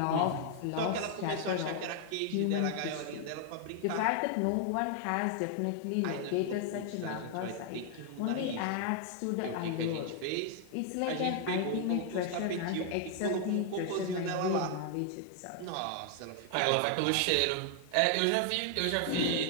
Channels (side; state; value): both; different; correlation 0.00